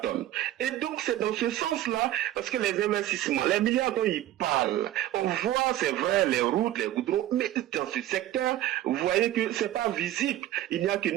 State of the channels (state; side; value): quieter; left; 13.5 dB